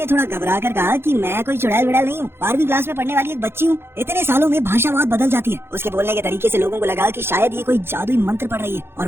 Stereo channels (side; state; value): left; late; 0.11 ms